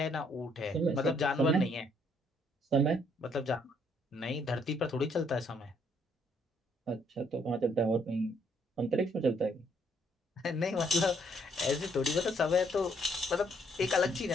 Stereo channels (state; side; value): normal; both; correlation 0.68